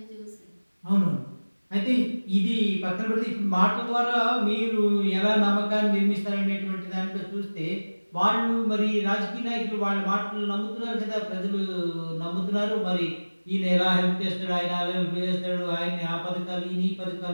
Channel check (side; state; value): both; inverted; correlation -1.00